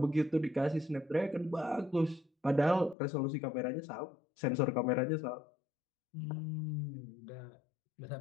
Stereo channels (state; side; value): drops out; right; at 3.0 s